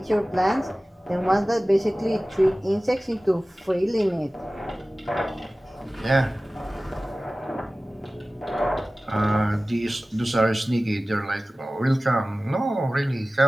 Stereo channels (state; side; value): normal; both; correlation 0.97